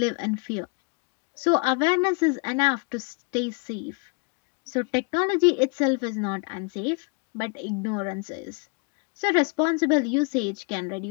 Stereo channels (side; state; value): right; quieter; 33.4 dB